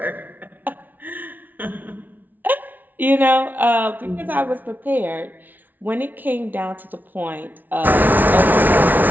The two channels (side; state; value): left; late; 0.083 ms